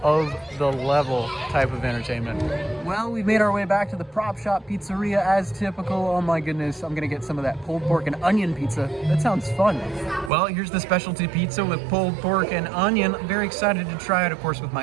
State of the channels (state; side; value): drops out; left; at 10.3 s